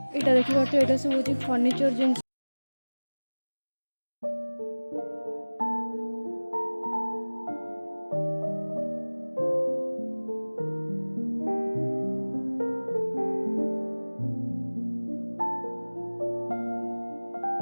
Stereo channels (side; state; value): both; inverted; correlation -1.00